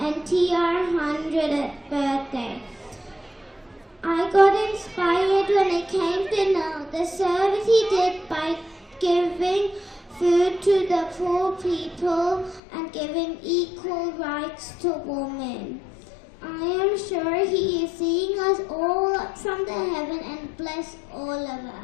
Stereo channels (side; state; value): right; drops out; at 12.6 s